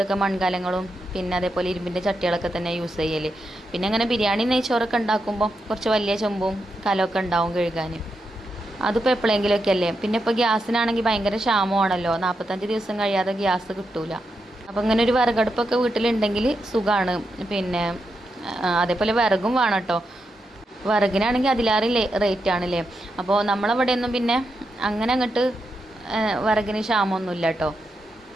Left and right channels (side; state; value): both; normal; correlation 0.85